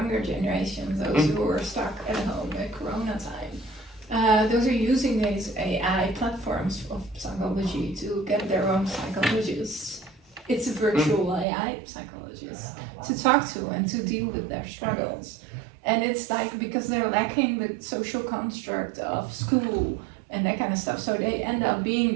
generation, those who are stuck at home at Corona time. Those are using these AI platforms of psychology to get their own psychologists. It's a virtual AI psychologist to talk to and to deal with their struggles. And it's like, because they're lacking the social construct of school and that kind of stuff, so they end up being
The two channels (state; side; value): drops out; left; at 11.5 s